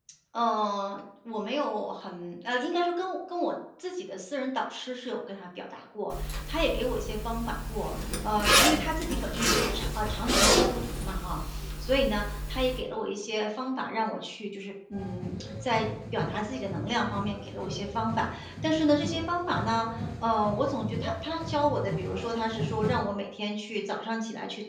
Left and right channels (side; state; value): both; identical; correlation 1.00